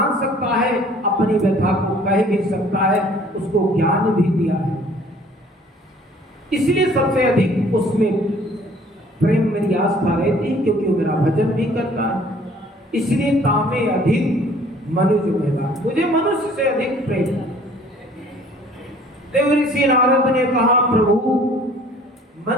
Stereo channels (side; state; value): both; normal; correlation 0.54